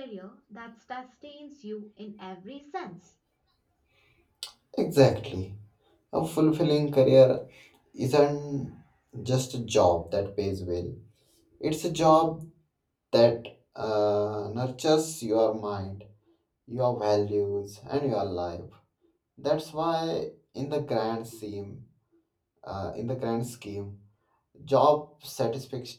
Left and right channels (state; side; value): identical; both; correlation 1.00